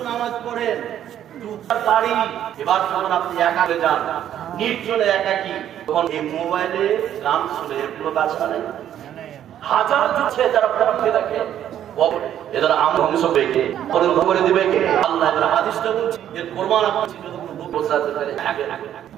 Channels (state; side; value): quieter; left; 10.7 dB